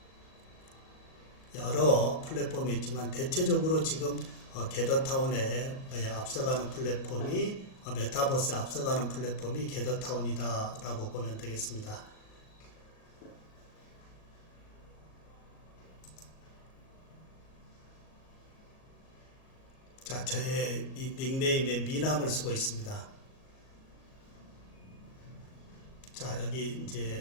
여러 플랫폼이 있지만 대체적으로 지금 게더타운에 앞서가는 플랫폼이 메타버스에 앞서가는 플랫폼이 게더타운이다 라고 보면 되겠습니다. 자, 저의 이 닉네임에 미남을 쓰고 있습니다. 자, 여기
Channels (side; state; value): right; late; 37 ms